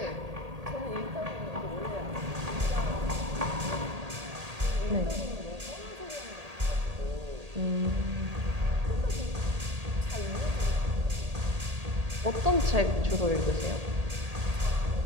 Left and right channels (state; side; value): late; left; 1.8 ms